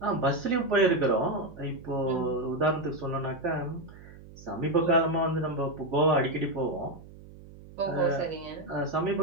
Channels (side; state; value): right; noise; hum, 18 dB below the sound